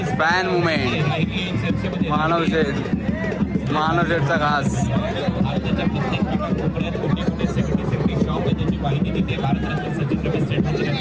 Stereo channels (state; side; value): identical; both; correlation 1.00